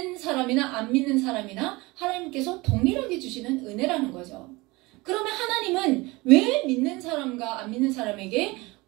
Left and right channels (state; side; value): quieter; left; 23.0 dB